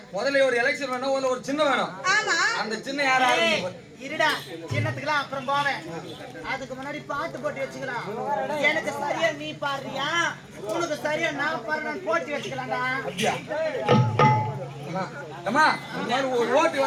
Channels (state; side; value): identical; both; correlation 1.00